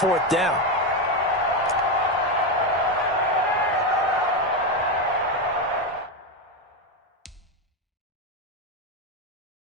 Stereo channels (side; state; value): both; normal; correlation 0.10